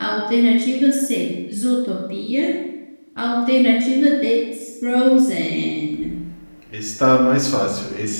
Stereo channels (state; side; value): inverted; both; correlation -1.00